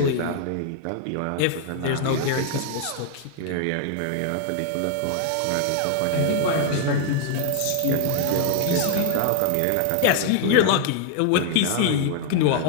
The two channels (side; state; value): both; different; correlation 0.00